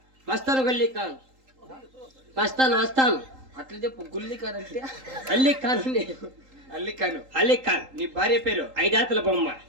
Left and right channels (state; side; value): late; left; 3.8 ms